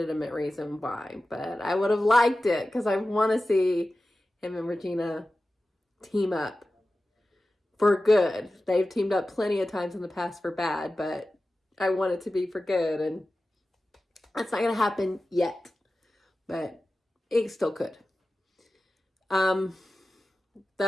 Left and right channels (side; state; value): both; normal; correlation 0.95